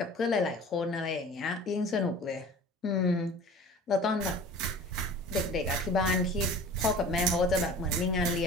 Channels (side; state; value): both; normal; correlation 0.42